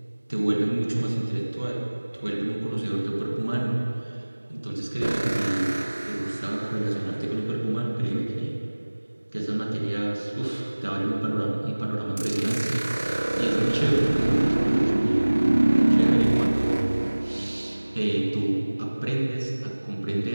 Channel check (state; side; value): inverted; both; correlation -1.00